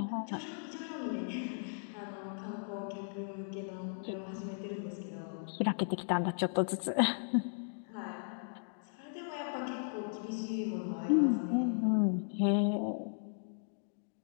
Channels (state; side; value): silent; right; digital silence